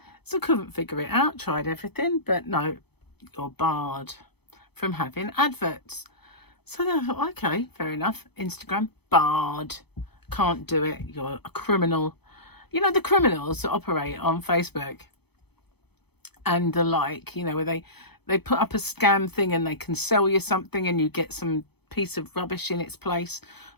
So I couldn't figure it out. Tried everything, but no, you're barred from having adverts. So then I thought, okay, fair enough. Instagram, barred. Can't do it. You're a criminal. You know, the criminals that operate on Facebook and the like, you know, where they put up a scam thing and they can sell you something and you get some piece of rubbish in its place.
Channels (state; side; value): late; right; 0.98 ms